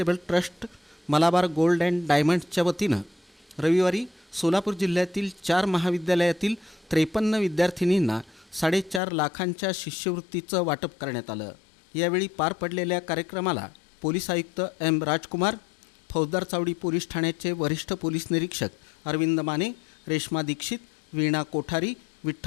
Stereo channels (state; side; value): drops out; right; at 9.0 s